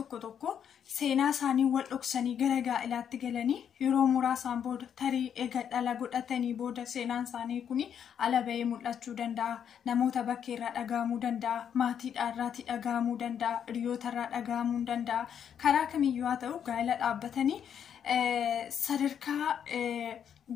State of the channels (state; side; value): quieter; right; 8.5 dB